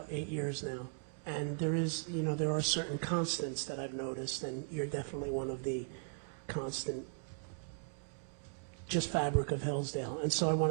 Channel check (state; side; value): silent; left; digital silence